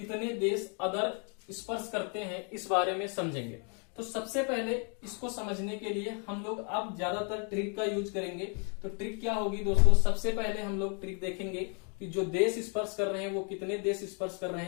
देश अदर स्पर्श करते हैं, इस बारे में समझेंगे। तो सबसे पहले इसको समझने के लिए हम लोग अब ज्यादातर ट्रिक का यूज करेंगे। तो ट्रिक क्या होगी दोस्तों? सबसे पहले हम लोग ट्रिक देखेंगे कि जो देश स्पर्श कर रहे हैं वो कितने देश स्पर्श कर रहे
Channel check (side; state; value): right; quieter; 38.5 dB